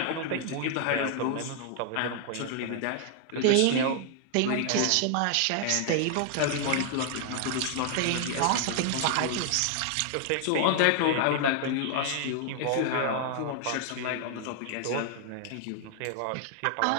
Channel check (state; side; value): different; both; correlation 0.00